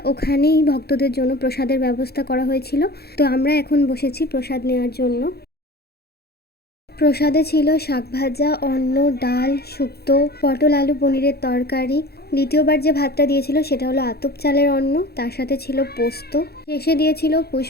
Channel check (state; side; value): late; right; 0.46 ms